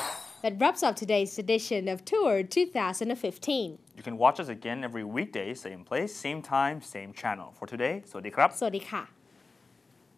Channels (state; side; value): quieter; right; 3.9 dB